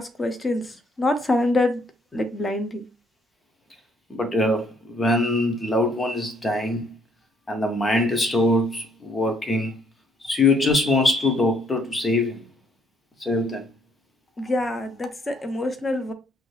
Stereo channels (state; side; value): normal; both; correlation 0.67